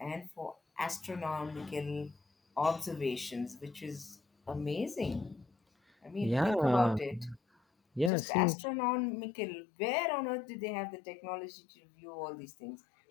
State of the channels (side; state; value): right; drops out; at 8.1 s